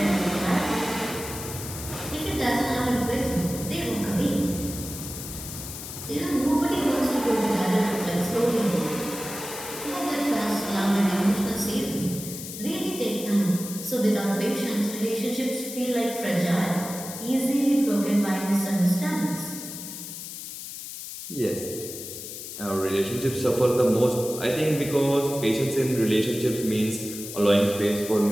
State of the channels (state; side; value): noise; left; hiss, 10 dB below the sound